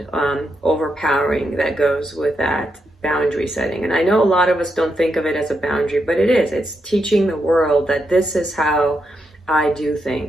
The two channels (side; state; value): both; normal; correlation 0.83